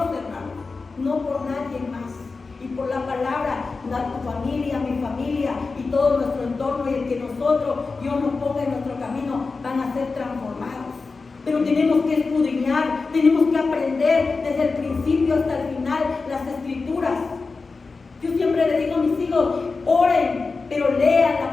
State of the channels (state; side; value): quieter; right; 4.2 dB